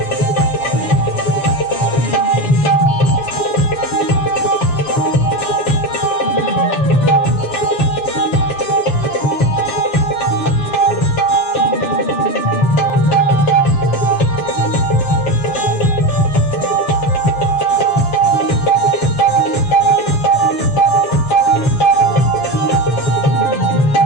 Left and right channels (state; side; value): late; right; 7.1 ms